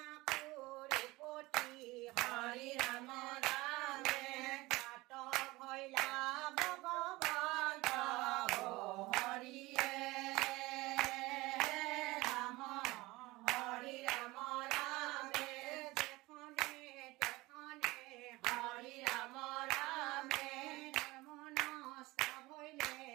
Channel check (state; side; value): quieter; left; 20.9 dB